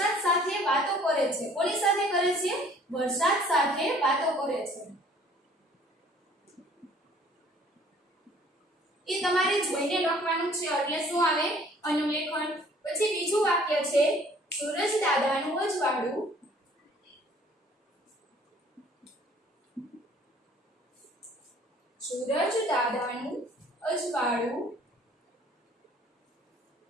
સાથે વાતો કરે છે. કોની સાથે કરે છે? વરસાદ સાથે વાતો કરે છે. એ તમારે જોઈને લખવાનું છે એટલે શું આવે? અનુલેખન. પછી બીજું વાક્ય છે સૂરજ દાદાનું અજવાળું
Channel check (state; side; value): normal; both; correlation 0.55